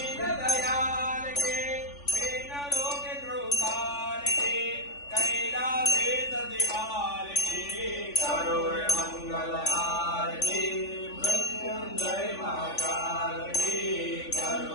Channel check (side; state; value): right; late; 3.5 ms